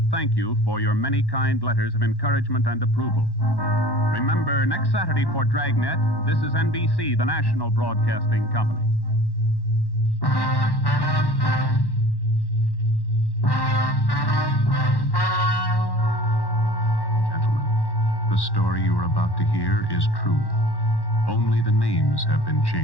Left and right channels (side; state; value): right; late; 1.1 ms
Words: thank you for your many kind letters of encouragement and approval. Remember, next Saturday for Dragnet, this is NBC, the national broadcasting company. Gentlemen, the story you are about to hear is true. Only the names have been